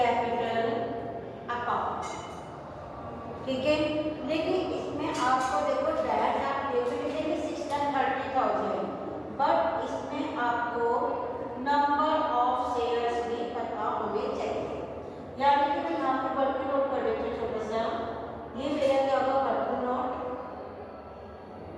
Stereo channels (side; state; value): both; identical; correlation 1.00